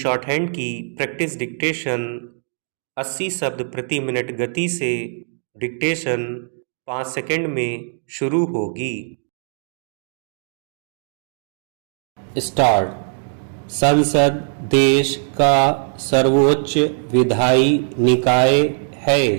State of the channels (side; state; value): left; silent; digital silence